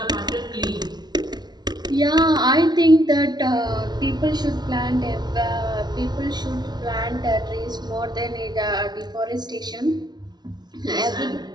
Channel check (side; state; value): left; late; 0.20 ms